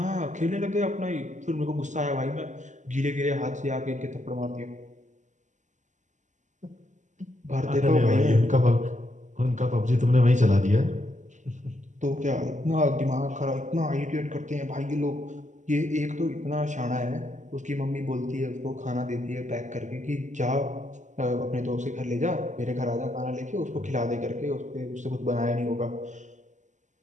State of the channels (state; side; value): late; left; 0.35 ms